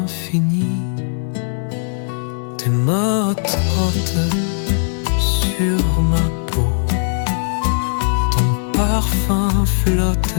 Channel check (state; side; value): silent; right; 67 dB below the other